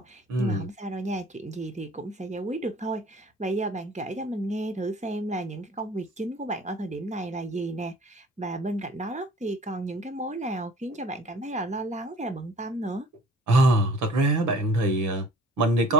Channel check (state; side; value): normal; both; correlation 0.51